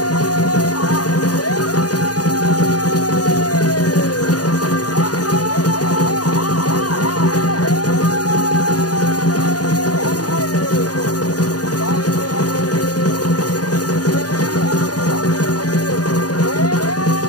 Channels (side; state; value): right; late; 0.68 ms